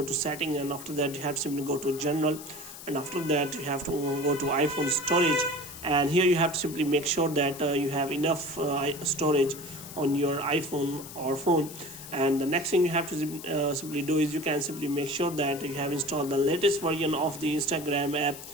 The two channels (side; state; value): left; noise; hiss, 14 dB below the sound